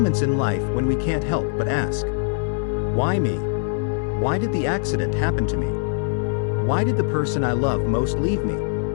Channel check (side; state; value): right; silent; digital silence